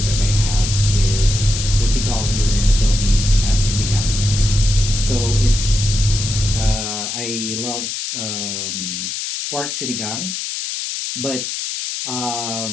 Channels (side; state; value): left; noise; hiss, 4 dB below the sound